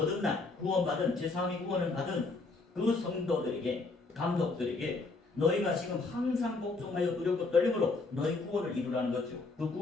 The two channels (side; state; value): right; quieter; 3.7 dB